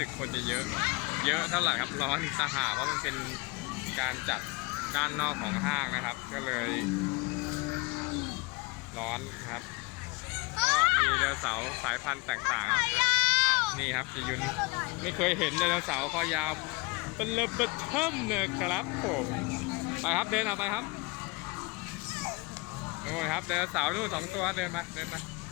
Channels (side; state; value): right; quieter; 26.1 dB